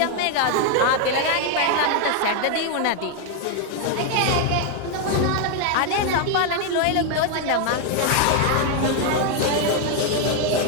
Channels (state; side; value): different; both; correlation 0.00